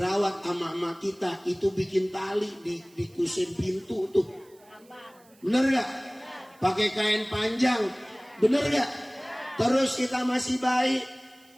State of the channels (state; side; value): noise; right; hiss, 29 dB below the sound